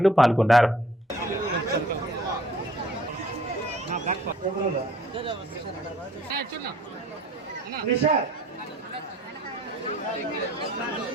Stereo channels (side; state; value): both; normal; correlation 0.56